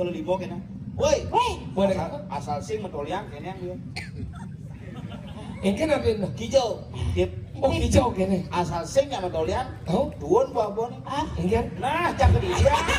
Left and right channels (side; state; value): both; identical; correlation 1.00